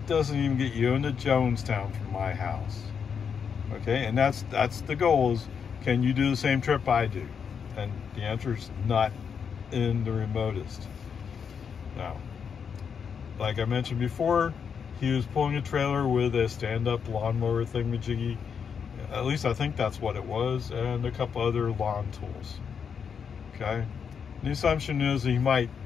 doesn't even get you into Jonestown from my house. Okay, and that's the goal, is can you do the same trip I do? And the answer is not in the remotest. Now, like I mentioned before, he was pulling a trailer with a stand-up lawnmower thingamajiggy. At least I think that's what it was, and a couple other lawn tools. Okay, the assumption is he might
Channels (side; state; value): right; quieter; 6.8 dB